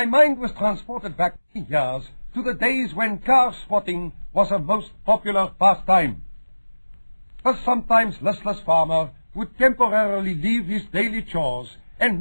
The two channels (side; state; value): both; inverted; correlation -1.00